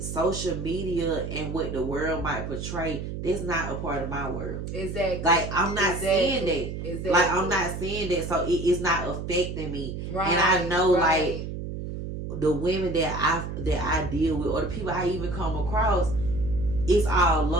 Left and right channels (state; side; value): noise; right; hum, 6 dB below the sound